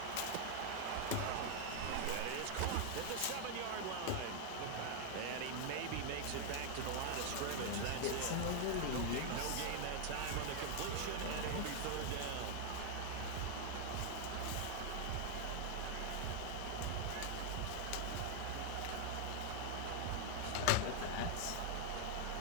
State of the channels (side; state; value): both; different; correlation 0.00